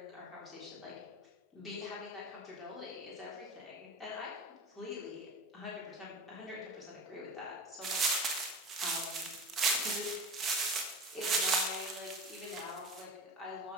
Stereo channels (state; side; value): normal; both; correlation 0.30